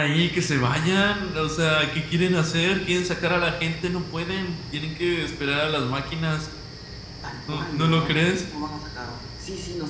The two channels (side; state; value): both; identical; correlation 1.00